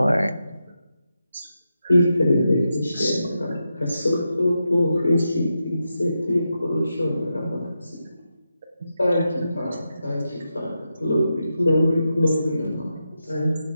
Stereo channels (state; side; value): inverted; both; correlation -0.88